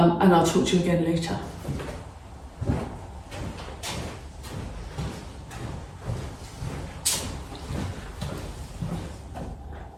I'll talk to you again later.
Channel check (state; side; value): identical; both; correlation 1.00